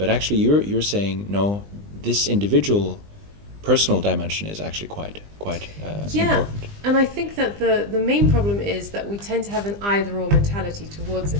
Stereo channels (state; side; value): late; left; 20 ms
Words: actually, you're saying no, this individual, personal dimension is actually quite important. And I think that the main problem is that we tend to have an either-or mentality towards it.